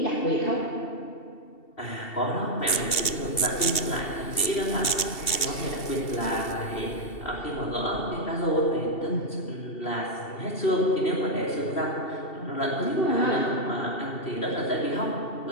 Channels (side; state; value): right; late; 2.7 ms